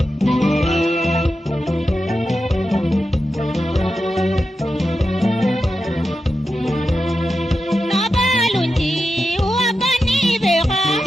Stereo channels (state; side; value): normal; both; correlation 0.90